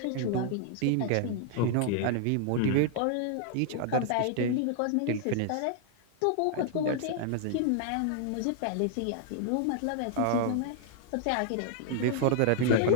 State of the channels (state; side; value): different; both; correlation 0.00